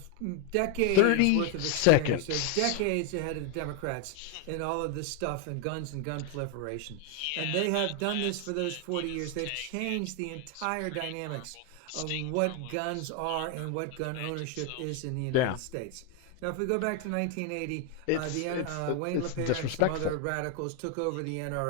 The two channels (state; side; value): different; both; correlation 0.01